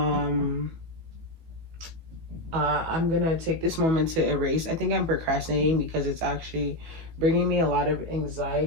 I'm gonna take this moment to erase. I think I'm procrastinating because it's actually bringing me a lot of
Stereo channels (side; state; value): left; late; 18 ms